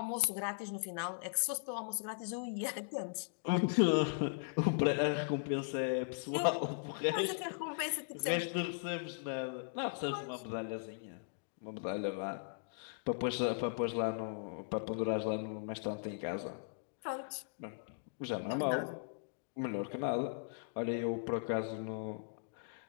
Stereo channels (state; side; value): silent; right; digital silence